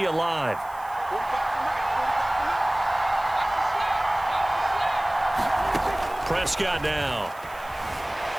alive. Prescott now.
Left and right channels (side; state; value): right; noise; hiss, 23 dB below the sound